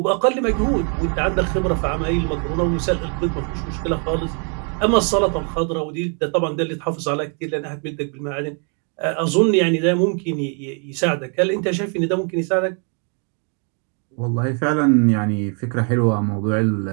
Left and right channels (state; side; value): quieter; left; 40.0 dB